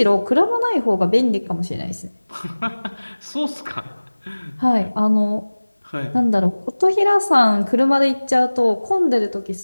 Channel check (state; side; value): inverted; both; correlation -1.00